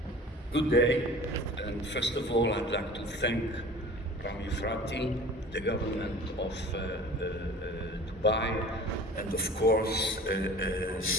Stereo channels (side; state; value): both; normal; correlation 0.42